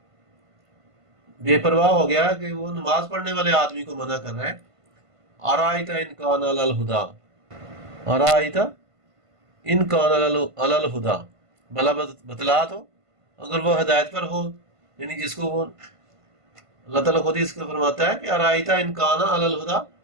بے پرواہ ہو گیا کہ وہ نماز پڑھنے والے آدمی کو منع کر رہا ہے۔ آرایت ان کان علی الہدی، آرایت ان کان علی الہدی، بھلا بتلا تو اگر وہ ہدایت پر ہو، یعنی جس کو وہ اللہ تعالیٰ خود ہی اس کو فرماتا ہے کہ آرایت ان کان علی الہدی،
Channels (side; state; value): left; late; 1.5 ms